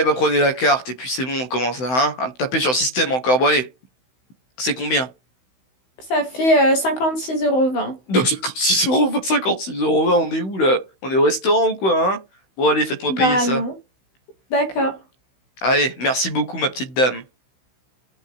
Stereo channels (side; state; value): right; late; 16 ms